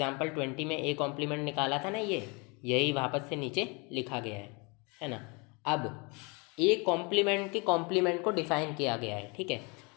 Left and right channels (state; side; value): quieter; right; 30.2 dB